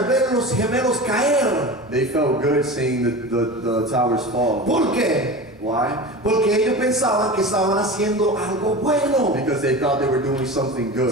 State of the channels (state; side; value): normal; both; correlation 0.31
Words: ver los gemelos caer. they felt good seeing the towers fall. ¿Por qué? Why? Porque ellos pensaban que estaban haciendo algo bueno. Because they thought they were doing something